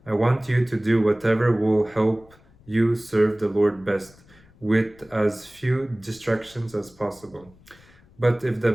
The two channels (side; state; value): left; noise; rumble, 27 dB below the sound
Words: I want you to do whatever will help you serve the Lord best, with as few distractions as possible. But